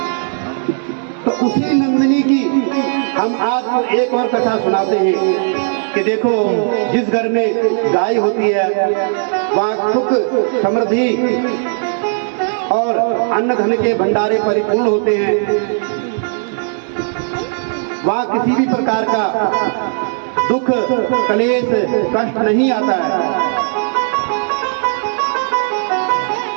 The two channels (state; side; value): silent; left; 65 dB below the other